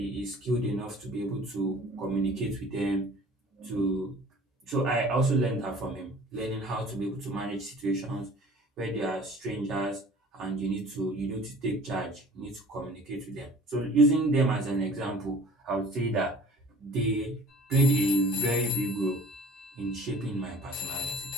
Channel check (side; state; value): both; normal; correlation 0.47